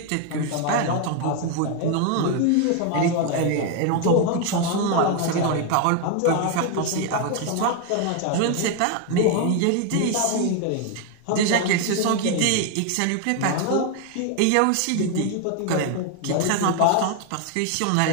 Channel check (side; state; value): both; different; correlation 0.01